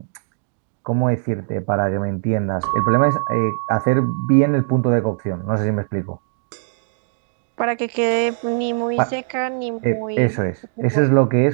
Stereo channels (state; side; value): silent; left; digital silence